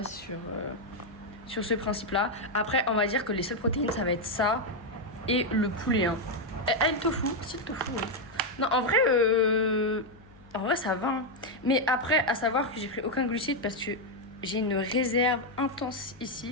sur ce principe-là. Après, on va dire que les seules protéines, ça va être ça et le poulet. Hein. Et le tofu, c'est le tofu, oui. Non, en vrai, ça va. Hein. Mais après, à savoir que j'ai pris aucun glucide parce que j'ai une réserve intense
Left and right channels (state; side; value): noise; left; hum, 24 dB below the sound